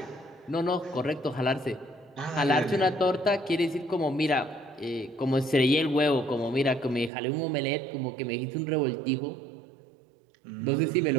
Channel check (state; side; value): drops out; left; at 7.1 s